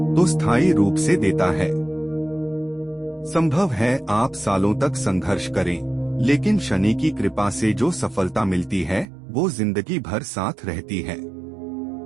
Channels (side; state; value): left; drops out; at 9.1 s